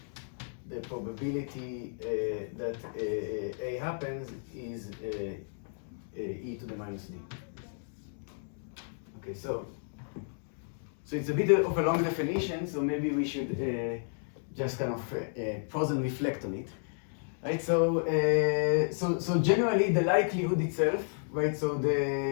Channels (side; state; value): right; silent; digital silence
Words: the probability that A happens is e to the minus D. Okay, so it's a bit of a long definition, so maybe we should just kind of pause and reflect on it. Right, so generally the likelihood itself, right? So